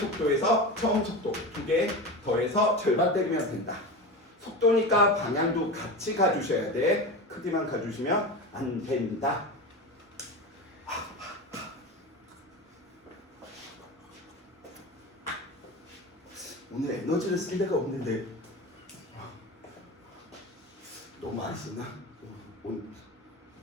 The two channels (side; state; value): both; normal; correlation 0.26